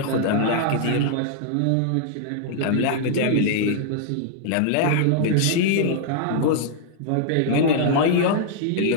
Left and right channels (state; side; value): different; both; correlation -0.01